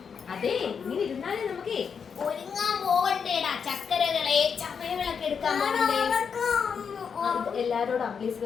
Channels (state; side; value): quieter; right; 6.5 dB